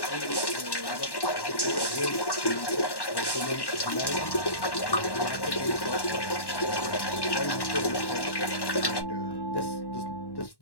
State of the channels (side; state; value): right; late; 1.1 ms